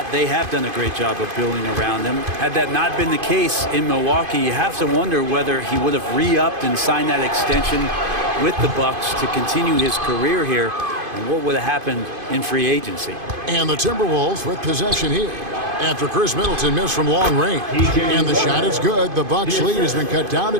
they have done a great job of building around him. Had that not been the case in Milwaukee, you have to wonder whether he would have re-upped and signed that extension with the Bucks to continue his career here, and what would have happened in free agency. And the Timberwolves with possession here after Chris Middleton missed from long range. And the shot is good. The Bucks lead has been cut down to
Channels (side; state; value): left; late; 2.5 ms